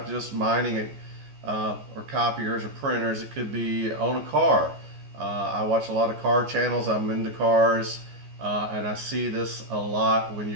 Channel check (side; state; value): left; late; 14 ms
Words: just mining or copiers or printers. It could be on a car. I watch a lot of car channels. I'm into cars, and I see this a lot when